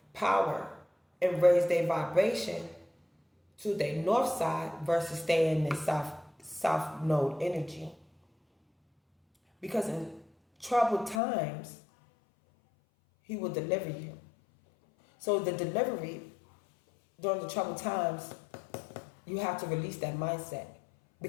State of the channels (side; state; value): right; drops out; at 11.2 s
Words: power and raise their vibration to their north side versus staying in their south node energy. Because in troubled times, he will deliver you. So the delivery during the troubled times, you have to release that mindset.